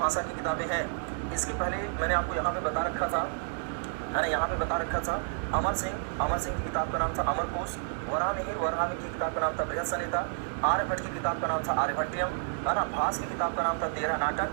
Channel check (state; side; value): silent; left; digital silence